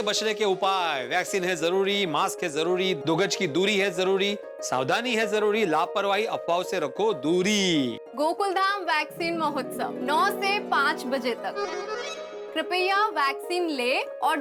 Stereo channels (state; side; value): identical; both; correlation 1.00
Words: बचने के उपाय, वैक्सीन है जरूरी, मास्क है जरूरी, 2 गज की दूरी है जरूरी, सावधानी है जरूरी, लापरवाही अफवाहों से रखो दूरी। गोकुलधाम वैक्सीन महोत्सव 9 से 5 बजे तक। कृपया वैक्सीन ले और